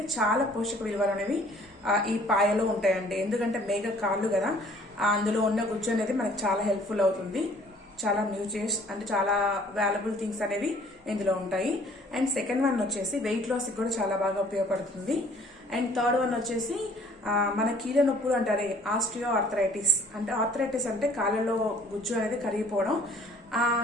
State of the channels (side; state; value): both; normal; correlation 0.56